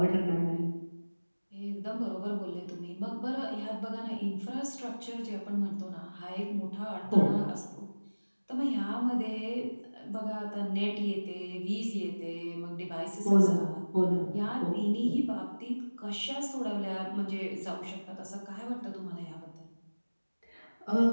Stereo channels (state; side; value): inverted; both; correlation -1.00